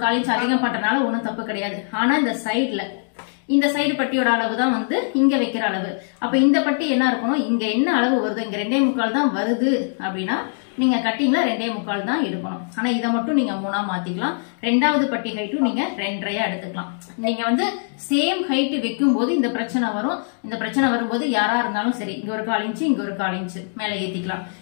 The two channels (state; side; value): silent; right; digital silence